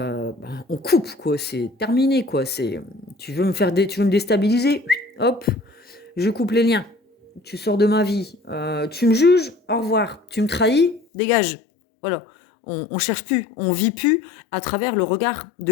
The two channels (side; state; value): right; drops out; at 11.1 s